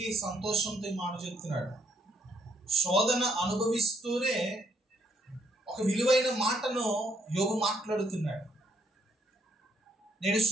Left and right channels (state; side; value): normal; both; correlation 0.71